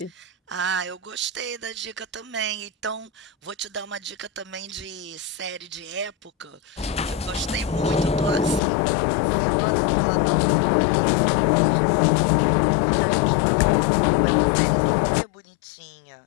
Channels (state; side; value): drops out; right; at 8.6 s